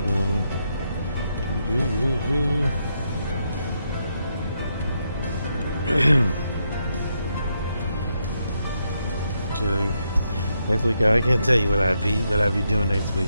next week, I can't tell you what I'd be doing next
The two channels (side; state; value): both; inverted; correlation -0.80